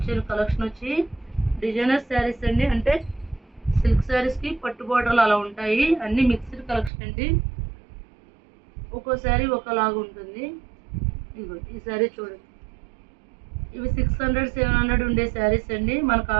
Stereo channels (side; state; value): left; drops out; at 6.9 s